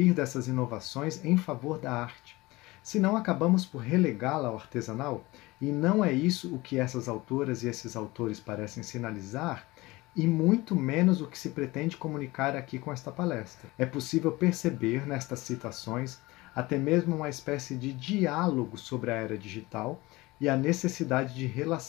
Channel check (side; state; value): right; quieter; 20.9 dB